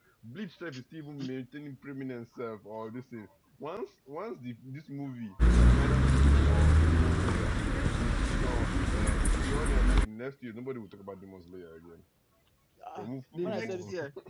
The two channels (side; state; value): both; identical; correlation 1.00